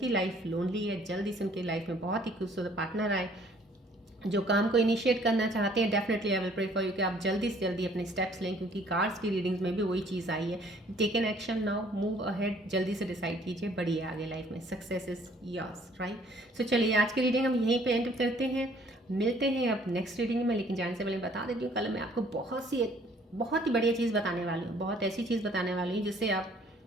लाइफ लोनली है, जल्दी से उनकी लाइफ में बहुत ही खूबसूरत पार्टनर आए। जो काम को इनिशिएट करना चाहते हैं, definitely I will pray for you कि आप जल्दी से जल्दी अपने स्टेप्स लें, क्योंकि कार्ड्स की रीडिंग्स में भी वही चीज़ आई है। Take an action now, move ahead, जल्दी से डिसाइड कीजिए, बढ़िए आगे लाइफ में, success is yours, right. So चलिए आज की रीडिंग हम यहीं पे एंड करते हैं, मिलते हैं अब नेक्स्ट रीडिंग में। लेकिन जाने से पहले बता देती हूँ, कल मैं आपको बहुत ही बढ़िया चीज़ बताने वाली हूँ, बहुत ऐसी चीज़ बताने वाली हूँ जिससे आप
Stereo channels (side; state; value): both; normal; correlation 0.59